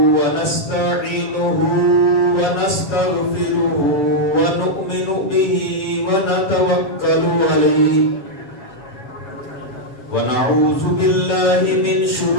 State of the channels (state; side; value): late; right; 7.5 ms